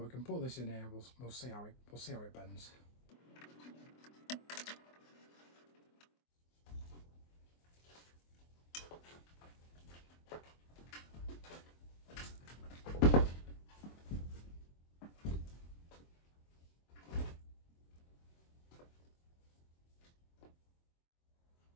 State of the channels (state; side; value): late; right; 24 ms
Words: we can put this in here. We'll see how it bends.